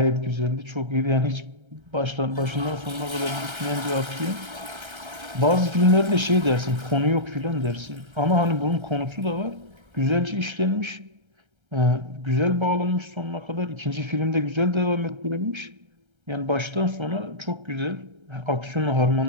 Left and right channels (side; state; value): left; late; 1.3 ms